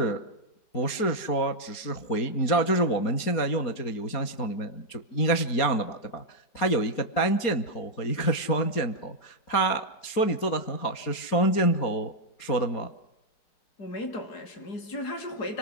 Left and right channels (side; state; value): right; late; 4.3 ms